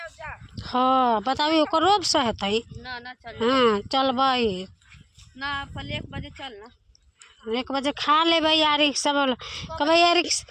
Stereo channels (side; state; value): both; identical; correlation 1.00